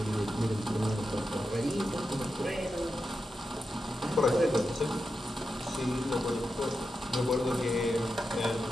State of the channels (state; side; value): normal; both; correlation 0.89